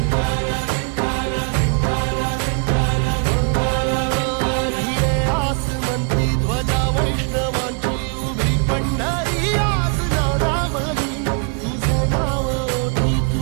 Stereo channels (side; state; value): left; quieter; 38.9 dB